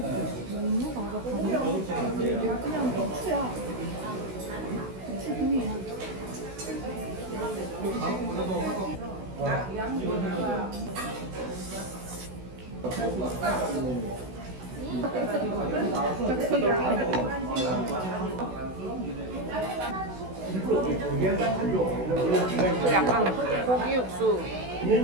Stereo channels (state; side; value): late; left; 16 ms